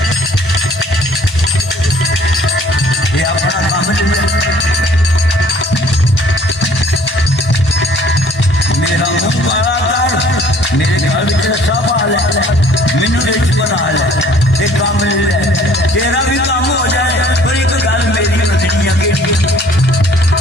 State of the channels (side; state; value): both; normal; correlation 0.56